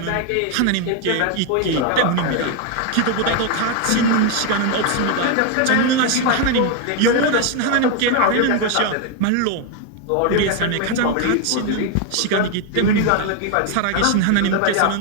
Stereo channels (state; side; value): different; both; correlation 0.01